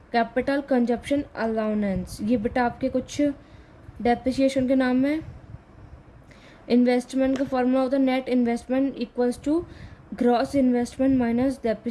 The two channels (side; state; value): both; identical; correlation 1.00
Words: capital consumption allowance. ये बेटा आपके कुछ डेप्रिसिएशन के नाम है। इन्वेस्टमेंट का फॉर्मूला होता है net investment equals to gross investment minus